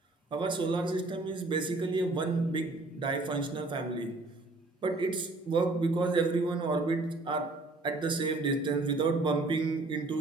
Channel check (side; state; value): left; quieter; 3.1 dB